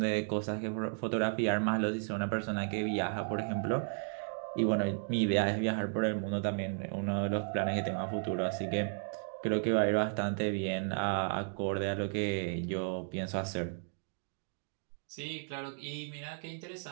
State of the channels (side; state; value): left; silent; digital silence